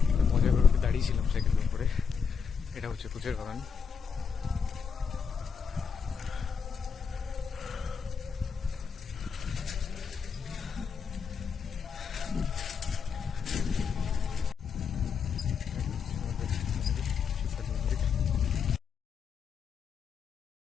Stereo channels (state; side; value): quieter; right; 6.4 dB